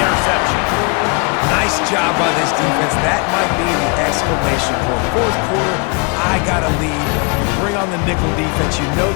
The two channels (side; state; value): right; quieter; 31.7 dB